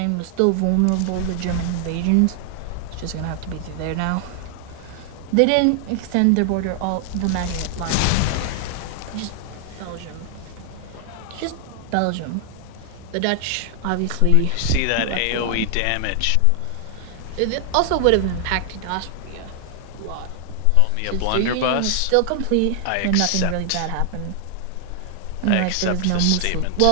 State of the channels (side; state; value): both; different; correlation 0.00